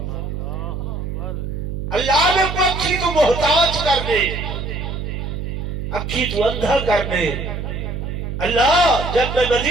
اللہ میں کو اکھی تو محتاج کر دے اکھی تو اندھا کر دے اللہ جب میں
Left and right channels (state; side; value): noise; right; hum, 5 dB below the sound